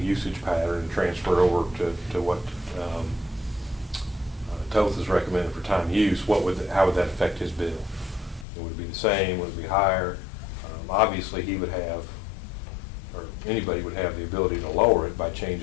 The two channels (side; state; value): right; drops out; at 8.5 s